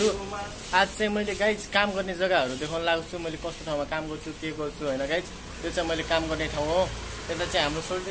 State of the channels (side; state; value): both; identical; correlation 1.00